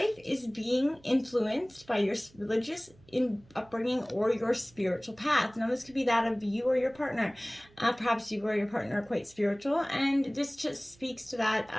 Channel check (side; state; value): right; noise; hum, 27 dB below the sound